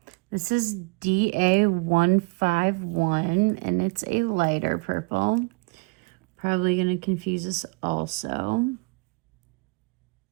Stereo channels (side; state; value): left; quieter; 29.5 dB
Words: This is DA151, and it's a lighter purple. Probably going to confuse us also.